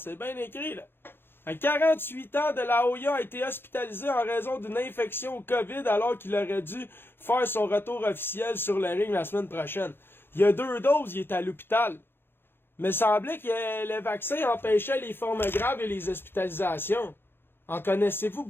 bien écrit, là. À 48 ans, de la Hoya a été hospitalisé en raison d'une infection au COVID alors qu'il aurait dû faire son retour officiel sur le ring la semaine prochaine. Il y a 2 doses, il est à l'hôpital. Mais semblait que le vaccin empêchait les formes graves et les hospitalisations. En connaissez-vous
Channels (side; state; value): right; late; 0.10 ms